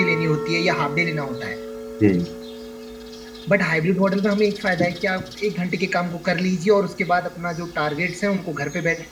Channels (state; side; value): identical; both; correlation 1.00